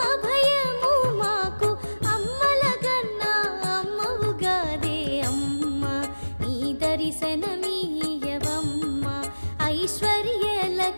భయము మాకు అమ్మలగన్నా అమ్మవుగాదే అమ్మా నీ దర్శనమీయవమ్మా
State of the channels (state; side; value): inverted; both; correlation -1.00